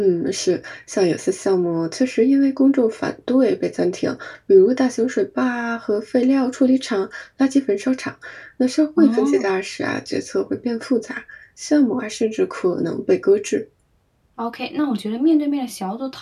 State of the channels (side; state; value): both; identical; correlation 1.00